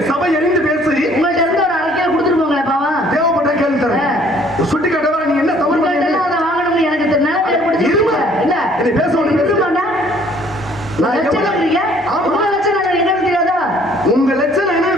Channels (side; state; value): both; normal; correlation 0.59